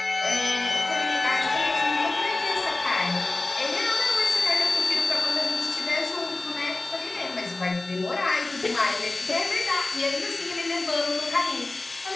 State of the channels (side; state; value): right; quieter; 3.1 dB